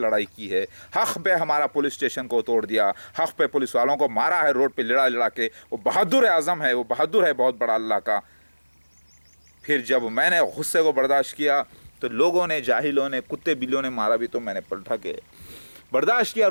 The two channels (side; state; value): both; inverted; correlation -1.00